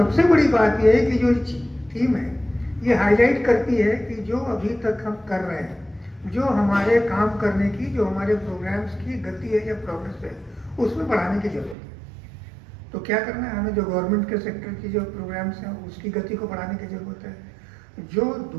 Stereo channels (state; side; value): drops out; left; at 11.8 s